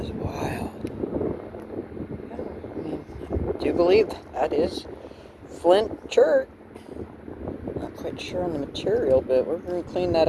is wild. I mean, I do believe that is flint chert. Not quite sure on the material, but we're going to clean that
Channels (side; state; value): both; identical; correlation 1.00